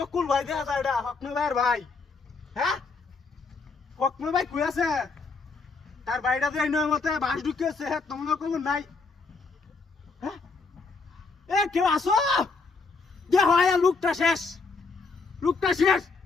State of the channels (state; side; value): quieter; right; 4.2 dB